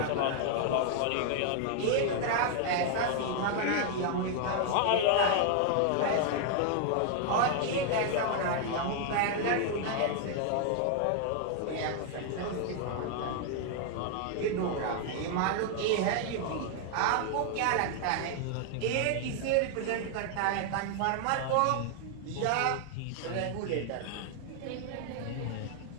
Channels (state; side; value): different; both; correlation 0.00